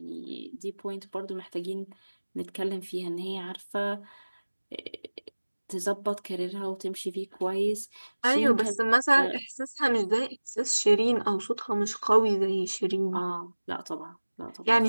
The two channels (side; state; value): both; inverted; correlation -1.00